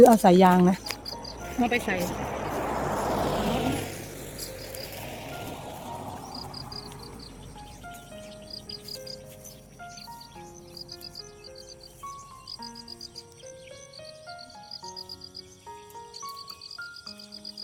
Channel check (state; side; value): identical; both; correlation 1.00